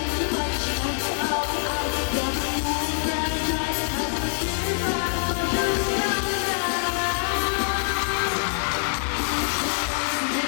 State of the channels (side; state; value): right; silent; digital silence